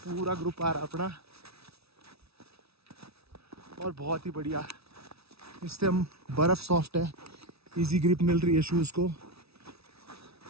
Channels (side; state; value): left; late; 0.77 ms